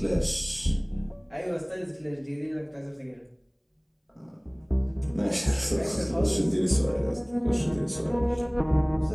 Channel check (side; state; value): both; identical; correlation 1.00